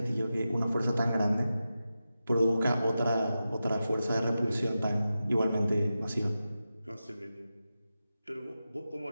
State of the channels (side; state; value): both; inverted; correlation -0.92